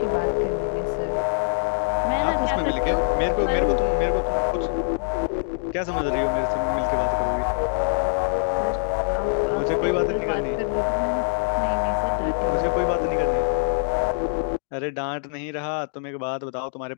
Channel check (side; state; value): right; silent; digital silence